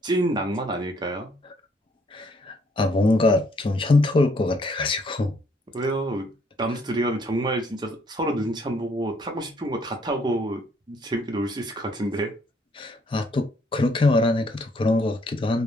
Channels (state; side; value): normal; both; correlation 0.67